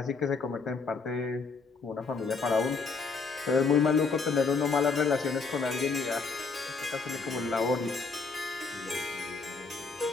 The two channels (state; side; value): quieter; right; 4.6 dB